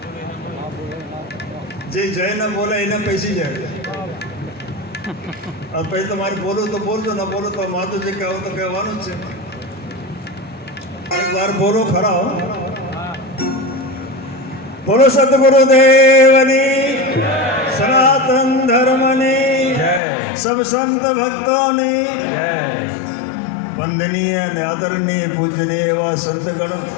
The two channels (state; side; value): drops out; right; at 20.0 s